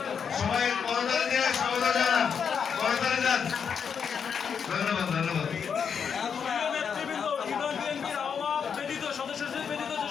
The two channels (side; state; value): right; quieter; 6.8 dB